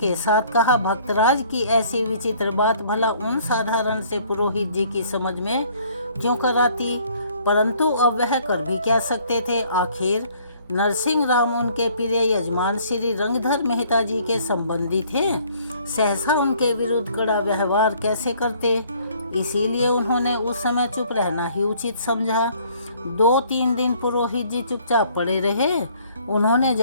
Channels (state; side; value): inverted; both; correlation -0.59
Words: साथ कहा। भक्तराज की ऐसी विचित्र बात भला उन साधारण से पुरोहित जी की समझ में क्यों कर आती? परंतु अब वह कर भी क्या सकते थे? आखिर नरसिंह राम उनके प्रिय यजमान श्री रंगधर मेहता जी के संबंधी थे। सहसा उनके विरुद्ध कड़ा व्यवहार कैसे करते? इसीलिए उन्होंने उस समय चुप रहना ही उचित समझा। 2-3 दिन पुरोहित जी चुपचाप पड़े रहे। उन्होंने